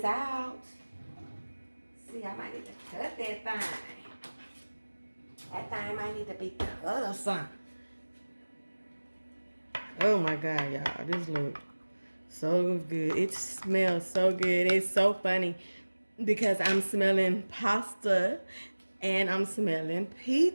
out. See, I might need to cut that thing. That thing might need to be cut or something. Oh my God, y'all, this look so good. It smells so good. It's so funny because I'm smelling pasta and I'm smelling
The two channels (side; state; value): both; inverted; correlation -1.00